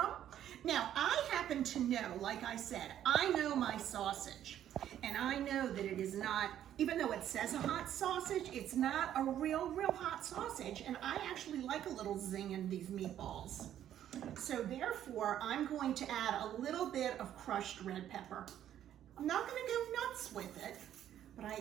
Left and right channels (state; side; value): quieter; left; 11.0 dB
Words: Now, I happen to know, like I said, I know my sausage. And I know that it is not, even though it says a hot sausage, it's not a real hot sausage. And I actually like a little zing in these meatballs. So therefore, I'm going to add a little bit of crushed red pepper. I'm not going to go nuts with it, but I